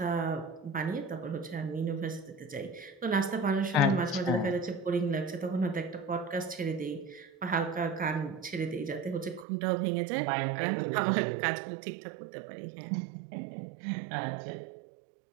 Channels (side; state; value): left; drops out; at 9.5 s